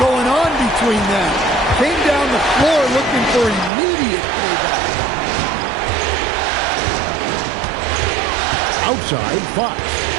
on between them. Came down the floor looking for immediate payback. Outside, Fox.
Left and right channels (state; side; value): drops out; left; at 3.7 s